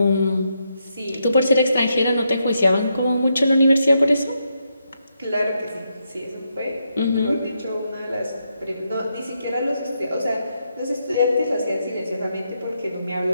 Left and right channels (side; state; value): both; inverted; correlation -0.81